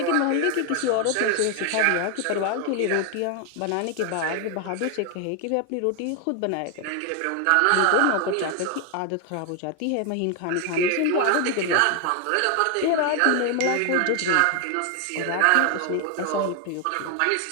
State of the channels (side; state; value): both; different; correlation 0.01